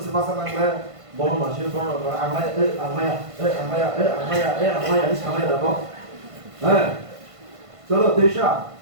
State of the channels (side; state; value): left; late; 1.5 ms